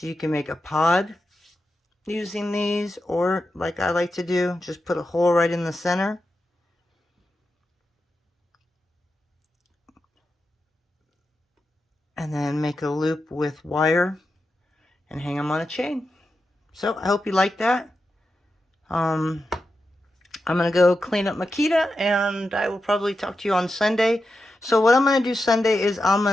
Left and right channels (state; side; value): normal; both; correlation 0.89